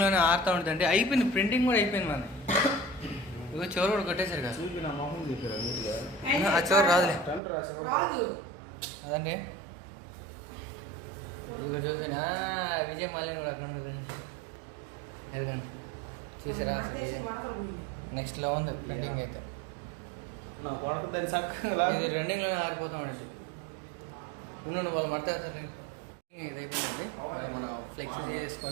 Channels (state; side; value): drops out; left; at 7.4 s